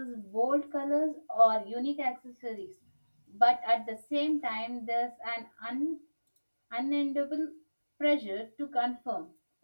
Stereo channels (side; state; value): both; inverted; correlation -1.00